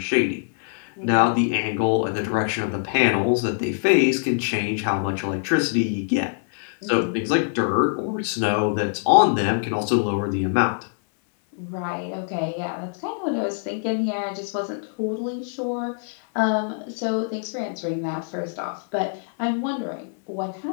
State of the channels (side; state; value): right; silent; 58 dB below the other